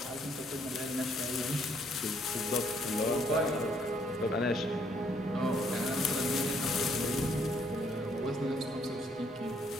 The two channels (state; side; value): normal; both; correlation 0.68